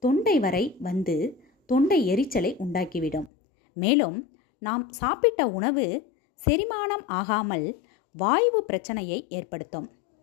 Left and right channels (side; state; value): right; drops out; at 3.3 s